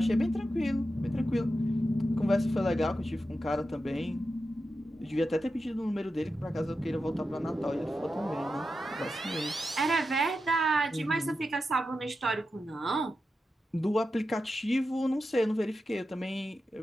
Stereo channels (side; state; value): both; normal; correlation 0.90